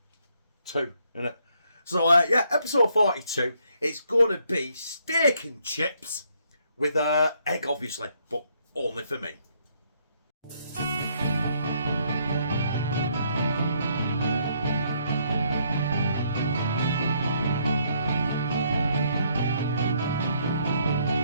isn't it? So yeah, episode 42, it's going to be steak and chips with egg obviously, but only for me.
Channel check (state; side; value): inverted; both; correlation -0.71